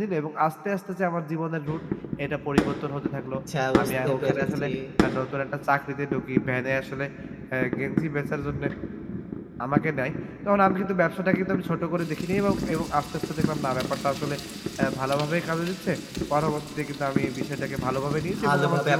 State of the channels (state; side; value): identical; both; correlation 1.00